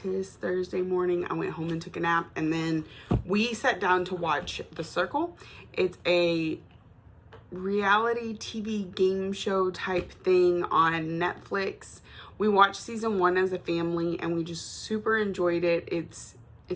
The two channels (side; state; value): both; identical; correlation 1.00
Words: Thursday morning. I went home and took a nap, and then we sat down to watch The Circle. It's a reality TV game show type thing on Netflix. We watched season 1 as a family, and we just super enjoyed it. It's